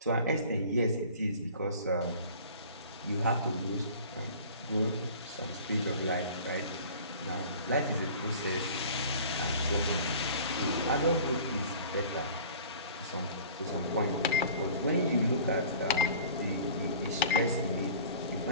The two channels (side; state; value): both; inverted; correlation -0.44